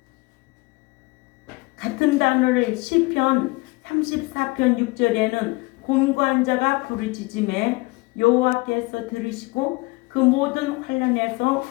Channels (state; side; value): quieter; right; 24.2 dB